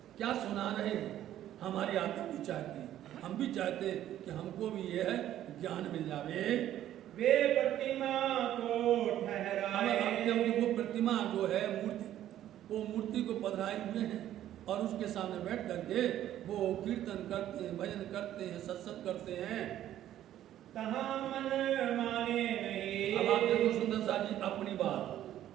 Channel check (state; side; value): quieter; left; 12.2 dB